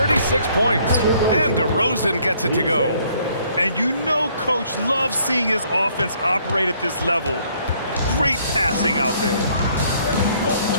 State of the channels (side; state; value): both; inverted; correlation -0.63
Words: points. And DeRozan gets it to go. And you know Coach loves seeing his offense operate at this level. Great passing out there.